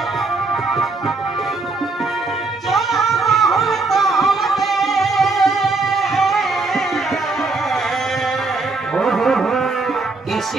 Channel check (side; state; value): left; quieter; 3.6 dB